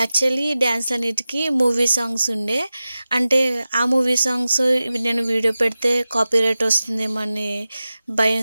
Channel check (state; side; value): inverted; both; correlation -0.95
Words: యాక్చువల్లీ డ్యాన్స్ అన్నిటికీ మూవీ సాంగ్స్ ఉండే. అంటే ఆ మూవీ సాంగ్స్ నేను వీడియో పెడితే కాపీరైట్ వస్తుందేమో అని